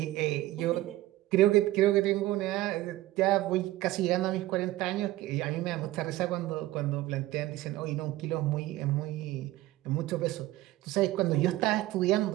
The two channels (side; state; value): left; quieter; 16.4 dB